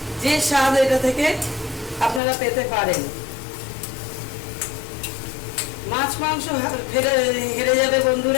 যে স্বাদ এটা থেকে আপনারা পেতে পারেন। মাছ মাংস হেরে যাবে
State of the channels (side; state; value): right; drops out; at 2.2 s